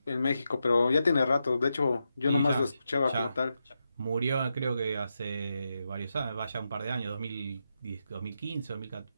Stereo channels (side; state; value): both; inverted; correlation -0.86